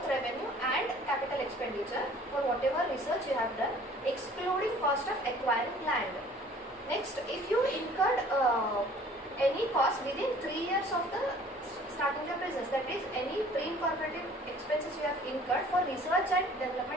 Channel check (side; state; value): both; normal; correlation 0.52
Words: revenue and capital expenditure for whatever research you have done, excluding cost of acquiring land. Next, if you incurred any cost within 3 years of the starting your business, that is any pre-incorporated expenses you have incurred for research and